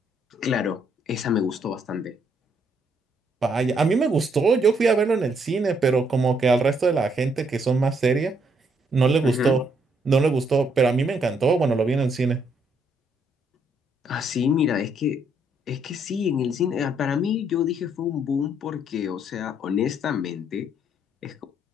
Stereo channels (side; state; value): both; normal; correlation 0.71